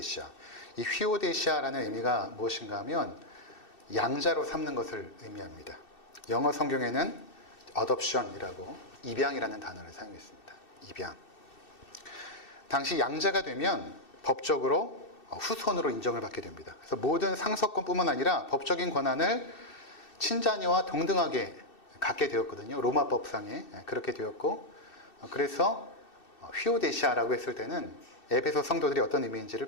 이 휘오데시아라는 의미가 무엇인가 하면 양자로 삼는 것을 의미합니다. 영어 성경에는 adoption이라고 입양이라는 단어를 사용했습니다. 입양. 당시 양자가 되면 법적으로 후손으로 인정을 받게 됩니다. 그래서 모든 상속권뿐만 아니라 법적인 권한을 친자녀와 동등하게 갖게 되었거든요. 로마법상에 그렇게 되었고, 그래서 휘오데시아라고 했을 때는 에베소 성도들이 어떤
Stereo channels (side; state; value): right; late; 2.6 ms